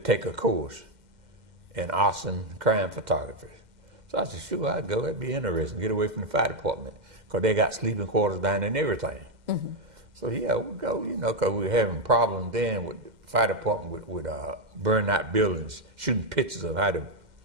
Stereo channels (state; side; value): late; left; 2.1 ms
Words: a course in arson crime photography. So I said, sure, I'd go. That'd be interesting. Get away from the fire department, because they got sleeping quarters down there and everything. So yeah, we'll go, you know, because we were having problems then with the fire department with burning out buildings, shooting pictures of how the